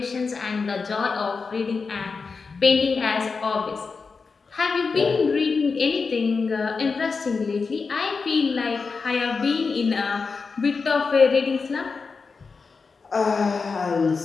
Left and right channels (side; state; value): right; quieter; 4.8 dB